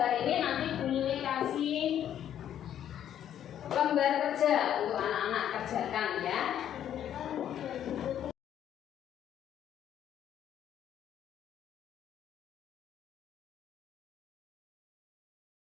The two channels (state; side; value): quieter; right; 10.3 dB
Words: ini, nanti Bu Lili kasih lembar kerja untuk anak-anak kerjakan ya.